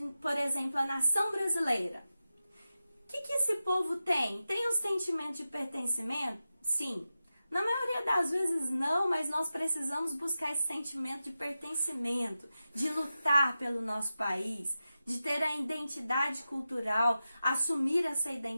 por exemplo, a nação brasileira. O que esse povo tem? Tem um sentimento de pertencimento? Sim. Na maioria das vezes não, mas nós precisamos buscar esse sentimento de pertencimento, de lutar pelo nosso país, de ter a identidade cultural, assumir essa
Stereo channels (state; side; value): inverted; both; correlation -0.92